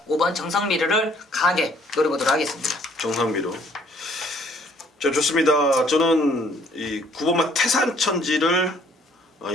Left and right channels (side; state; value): both; normal; correlation 0.61